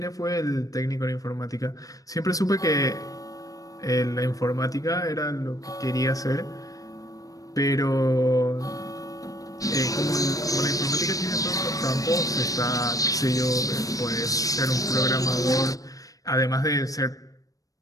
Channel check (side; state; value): right; late; 0.17 ms